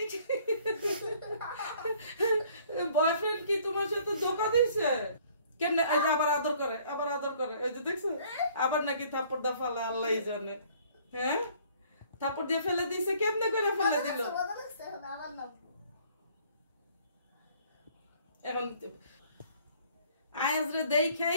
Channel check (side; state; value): both; inverted; correlation -0.58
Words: বয়ফ্রেন্ড কি তোমার সাথে ধোকা দিয়েছে? কেমনে আবার আদর করে ওই যে দেখছো, আবার নাকি থাপ্পড় দা ফালা আল্লাহ জানে। হ্যাঁ, থাপ্পড় দিয়ে ফেলে দিয়েছে, কেমনে করে ফেলে দিল? এখন আয়াজরে